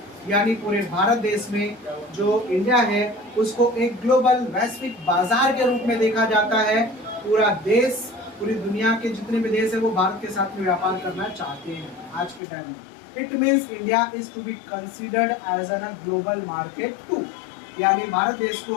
यानी पूरे भारत देश में जो इंडिया है उसको एक ग्लोबल वैश्विक बाजार के रूप में देखा जाता है। पूरा देश, पूरी दुनिया के जितने भी देश है वो भारत के साथ में व्यापार करना चाहते हैं आज के टाइम में। It means India is to be considered as an a global market too, यानी भारत देश को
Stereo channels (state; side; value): drops out; right; at 12.4 s